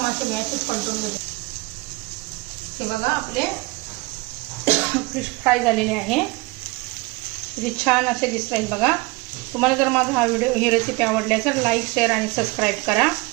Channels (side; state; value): left; quieter; 24.0 dB